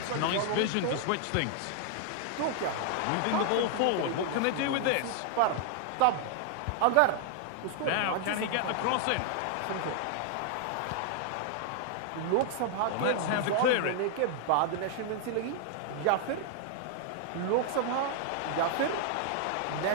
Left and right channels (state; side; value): different; both; correlation 0.00